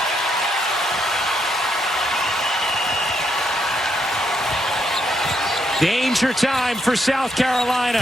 Danger time for South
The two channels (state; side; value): normal; both; correlation 0.77